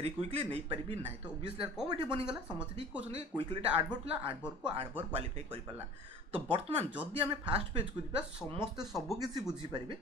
क्विकली नहीं पारि ना तो ओबियसली कौन ये बनीगला समस्त ठीक कहते क्विकलीटा एडवर्ब था एडवर्ब को एडवर्ब क्वालिफाई कर पारा तो बर्तमान जदि आम फास्ट पेज को जा समस्ते सबकि बुझीपारे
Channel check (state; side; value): normal; both; correlation 0.44